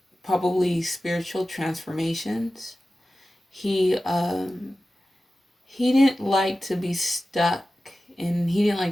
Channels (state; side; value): normal; both; correlation 0.95